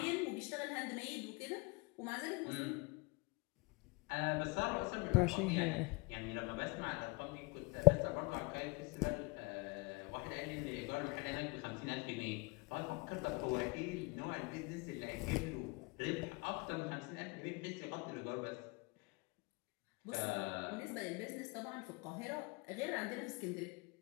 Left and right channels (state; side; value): quieter; right; 26.1 dB